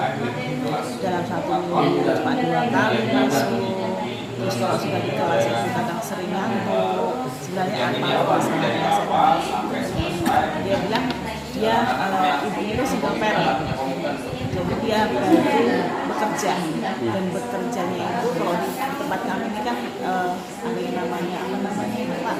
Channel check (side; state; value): both; identical; correlation 1.00